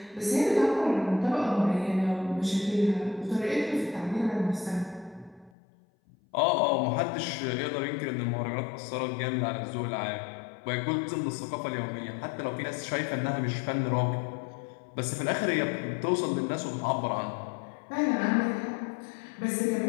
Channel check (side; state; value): right; drops out; at 5.5 s